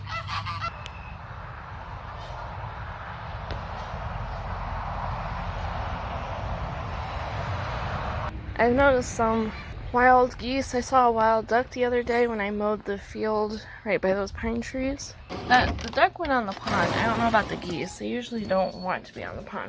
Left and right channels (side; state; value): both; identical; correlation 1.00